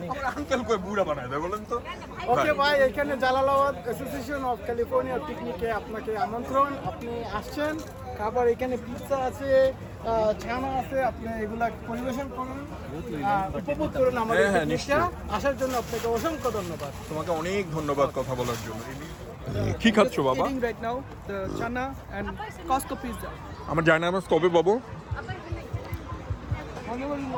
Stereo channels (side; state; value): both; identical; correlation 1.00